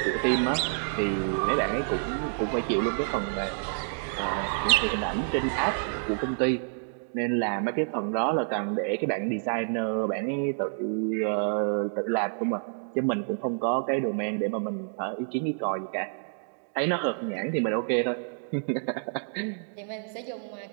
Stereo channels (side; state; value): left; silent; digital silence